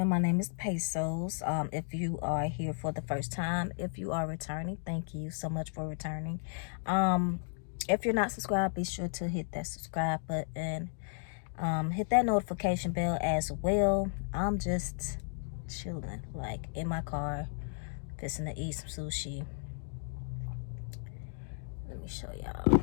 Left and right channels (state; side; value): silent; right; digital silence